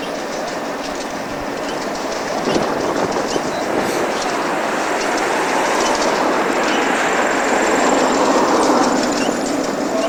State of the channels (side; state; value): both; identical; correlation 1.00